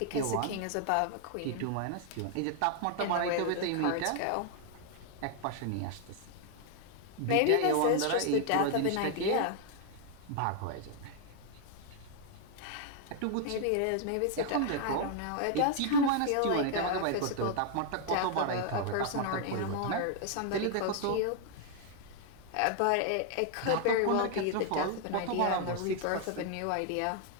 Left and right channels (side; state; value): both; different; correlation 0.00